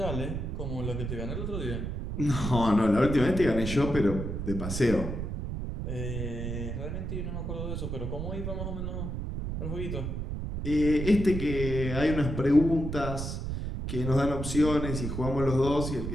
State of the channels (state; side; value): noise; right; rumble, 4 dB below the sound